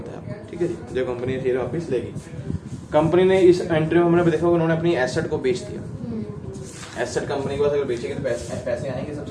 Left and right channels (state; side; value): identical; both; correlation 1.00